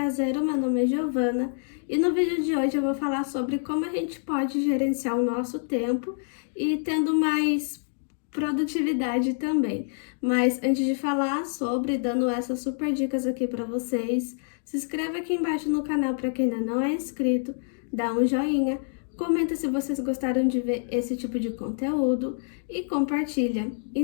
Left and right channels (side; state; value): right; silent; digital silence